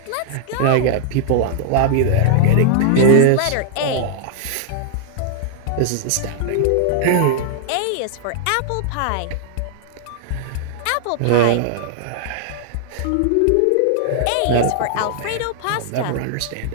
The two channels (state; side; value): different; both; correlation -0.01